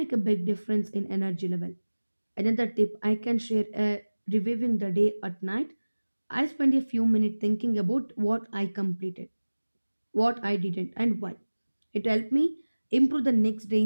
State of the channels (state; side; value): inverted; both; correlation -1.00